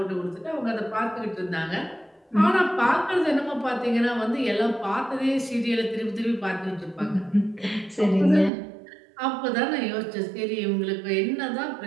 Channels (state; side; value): drops out; left; at 8.5 s